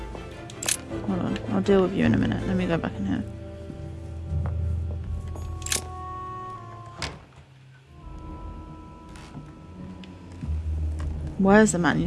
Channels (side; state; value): both; identical; correlation 1.00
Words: Hold on, I'll deal with you in a minute. Let me go back in here. Where's the